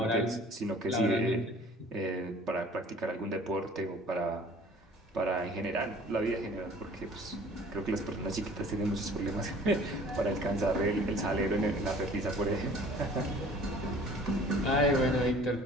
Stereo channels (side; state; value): both; normal; correlation 0.49